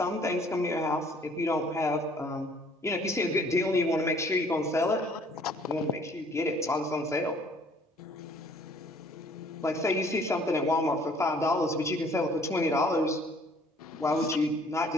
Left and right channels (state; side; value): normal; both; correlation 0.58